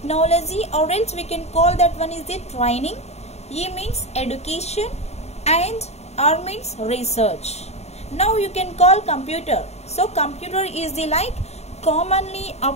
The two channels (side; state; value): right; late; 0.31 ms